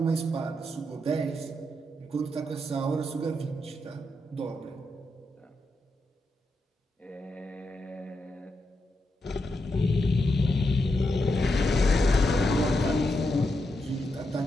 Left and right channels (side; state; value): both; normal; correlation 0.84